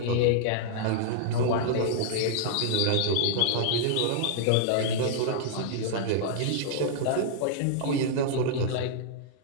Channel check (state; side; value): different; both; correlation -0.01